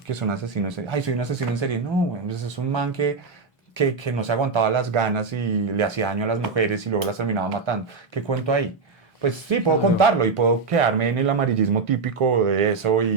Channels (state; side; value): quieter; left; 4.6 dB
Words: son asesinos. Ay, soy un asesino en serie. No, bueno, pues es un man que no se aguantaba las ganas y le hacía daño a las mujeres y luego las terminaba matando. ¿Qué cuento ahí? Pues sí, puedo contarlo y puedo quedarme en el amarillismo típico de eso